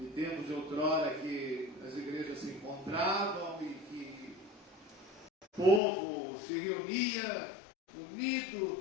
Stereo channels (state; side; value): drops out; right; at 5.8 s